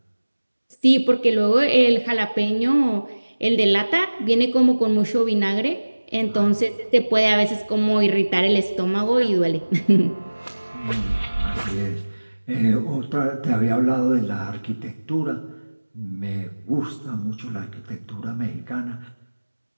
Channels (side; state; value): both; inverted; correlation -1.00